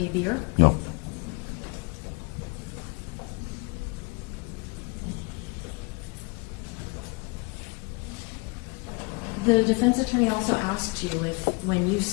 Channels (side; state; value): right; quieter; 29.4 dB